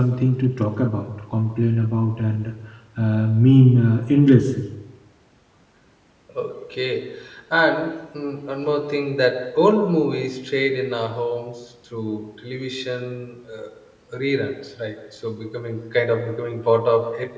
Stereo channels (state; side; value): identical; both; correlation 1.00